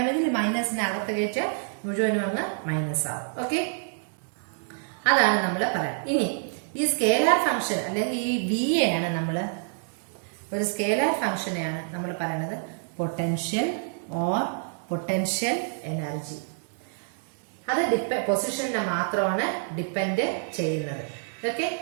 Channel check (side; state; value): left; silent; digital silence